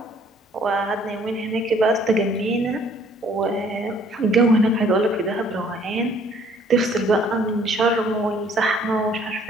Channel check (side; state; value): both; normal; correlation 0.59